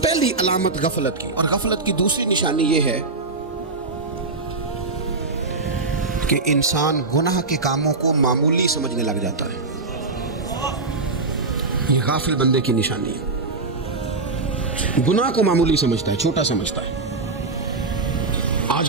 پہلی علامت غفلت کی۔ اور غفلت کی دوسری نشانی یہ ہے کہ انسان گناہ کے کاموں کو معمولی سمجھنے لگ جاتا ہے، یہ غافل بندے کی نشانی ہے۔ گناہ کو معمولی سمجھتا ہے، چھوٹا سمجھتا ہے۔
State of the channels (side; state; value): left; quieter; 3.7 dB